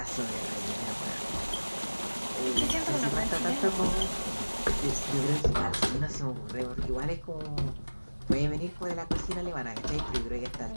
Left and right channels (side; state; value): both; inverted; correlation -1.00